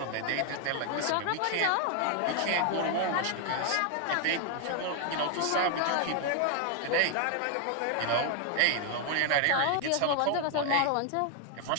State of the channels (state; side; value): different; both; correlation 0.00